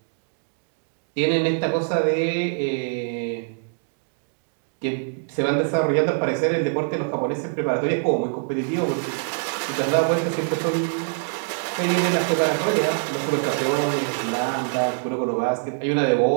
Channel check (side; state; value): left; silent; digital silence